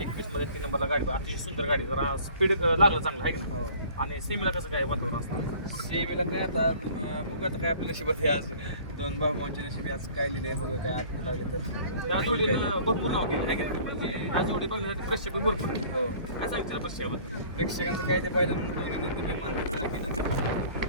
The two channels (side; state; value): both; inverted; correlation -0.50